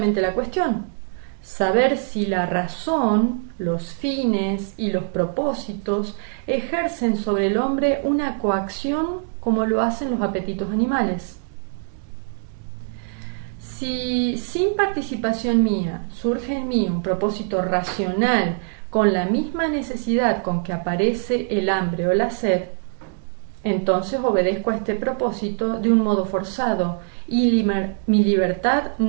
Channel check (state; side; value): silent; left; digital silence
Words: la cuestión: saber si la razón, los fines y los propósitos ejercen sobre el hombre una coacción como lo hacen los apetitos animales. Si sin participación mía surge en mí un propósito racional con la misma necesidad con que aparece el hambre o la sed, entonces obedezco a este propósito de un modo forzado y mi libertad